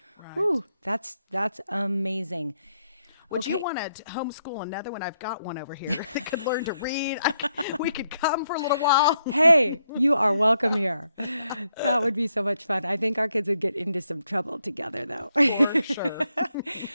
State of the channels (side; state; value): both; inverted; correlation -0.78